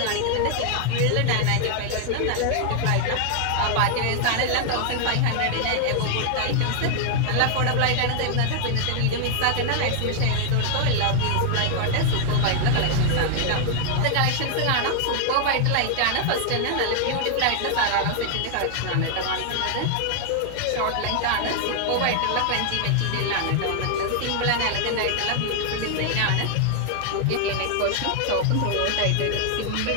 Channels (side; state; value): both; different; correlation 0.00